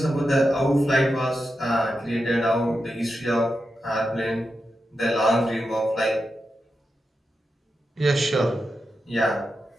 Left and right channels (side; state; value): both; normal; correlation 0.88